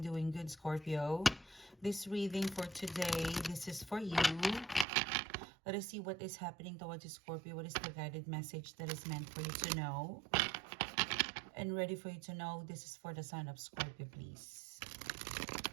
doing good, Scorpio. This reading for today, this is for you. Let us see what is happening towards you, Scorpio. What is the guided message that is meant for you to know? And ready for you to know, this is for the sign of Scorpio, please.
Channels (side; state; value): left; drops out; at 4.9 s